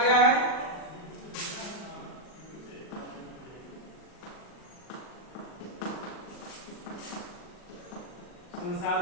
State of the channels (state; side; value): late; right; 39 ms